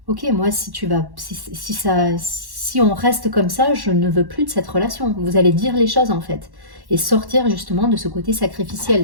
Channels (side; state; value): left; late; 1.1 ms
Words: OK, moi si tu vas si on reste comme ça, je ne veux plus de cette relation. Vous allez dire les choses, en fait, et sortir justement de ce côté